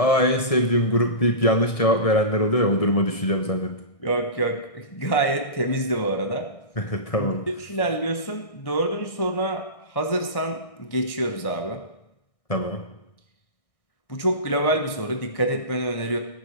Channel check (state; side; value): late; right; 1.6 ms